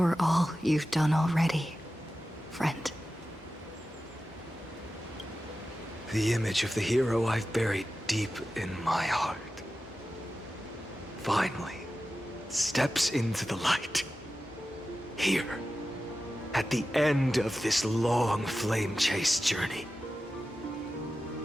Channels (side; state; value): both; normal; correlation 0.94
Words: all you've done already, friend. The image of the hero I've buried deep in my heart finally steps into the light. Here, at the end of this long flame chase journey.